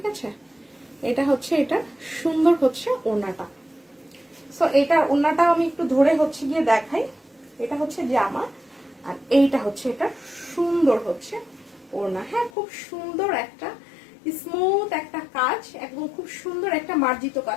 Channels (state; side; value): drops out; right; at 12.5 s